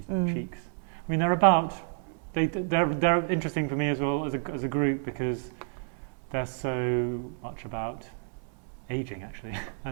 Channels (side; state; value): left; silent; 58 dB below the other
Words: cheeks. I mean, they're interesting for me as well as a group, because they're so much about aging, actually.